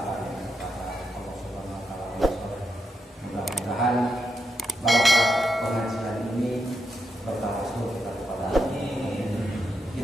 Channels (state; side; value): normal; both; correlation 0.83